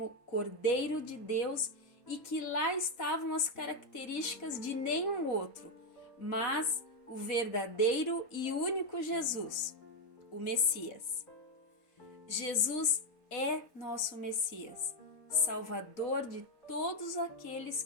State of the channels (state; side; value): late; right; 4.1 ms